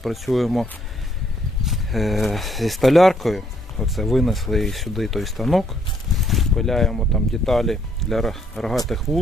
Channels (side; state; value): both; normal; correlation 0.69